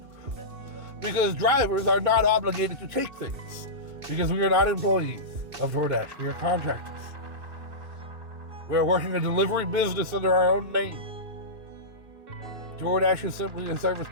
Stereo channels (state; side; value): late; left; 2.7 ms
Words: Because drivers are not obligated to take things. Because we are not employees of DoorDash. We are contractors. We are working a delivery business under our own name. DoorDash is simply a service